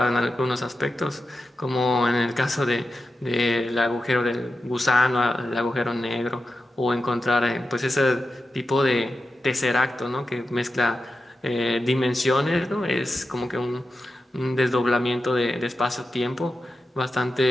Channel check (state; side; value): normal; both; correlation 0.91